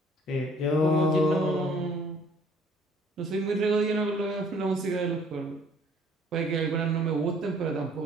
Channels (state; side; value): normal; both; correlation 0.57